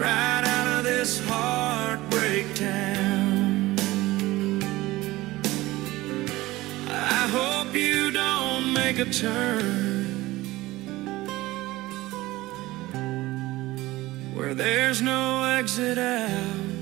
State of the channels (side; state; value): left; quieter; 18.5 dB